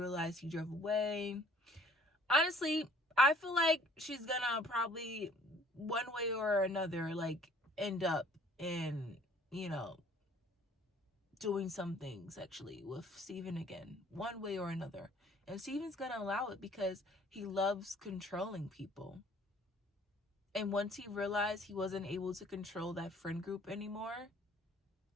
he drove away. Honestly, I feel like she's gonna probably one way or another like end up in, you know, doing something sexually with Steven again, one way or another. And Steven's gonna allow it because he loves controlling people. And once he realized he wasn't able to control that friend group anymore,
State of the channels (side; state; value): both; normal; correlation 0.56